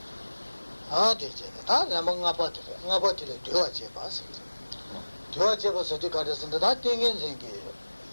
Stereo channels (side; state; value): both; inverted; correlation -1.00